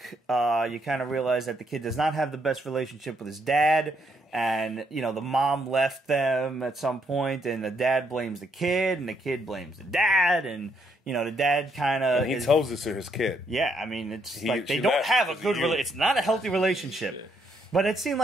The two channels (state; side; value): normal; both; correlation 0.73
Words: you kind of realize that the kid does not have the best relationship with his dad, and the mom left them at some point, and the dad blames the kid, and the kid blames the dad, and the dad kind of he tells this to his kid. Yeah, I mean, it's like they don't have a good relationship. It's not a healthy relationship. Yeah. But it seemed